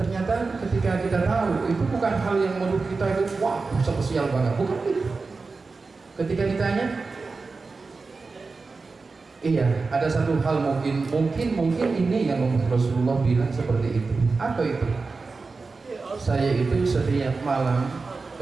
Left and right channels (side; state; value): left; quieter; 4.1 dB